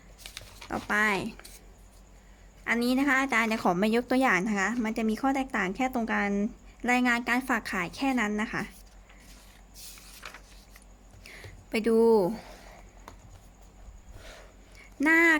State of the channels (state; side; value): identical; both; correlation 1.00